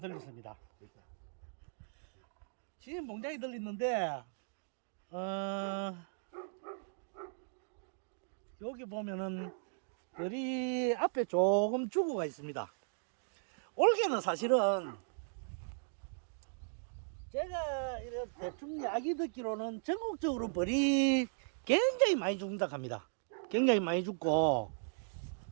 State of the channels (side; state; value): left; silent; digital silence